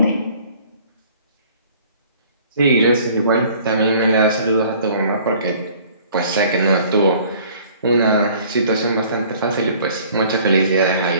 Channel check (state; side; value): inverted; both; correlation -0.53